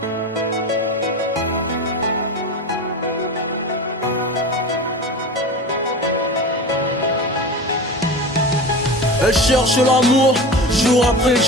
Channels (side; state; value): both; normal; correlation 0.29